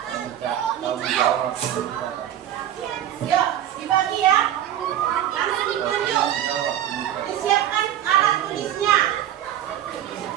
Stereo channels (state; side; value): quieter; left; 11.3 dB